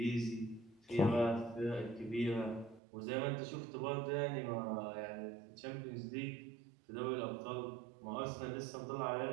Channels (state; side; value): drops out; left; at 2.8 s